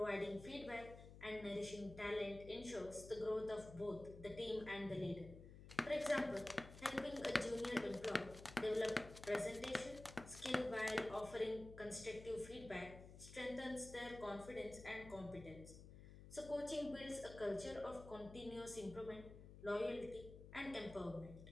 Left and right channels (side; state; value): left; noise; hum, 14 dB below the sound